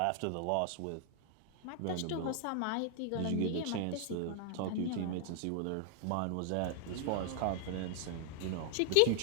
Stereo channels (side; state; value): both; different; correlation 0.00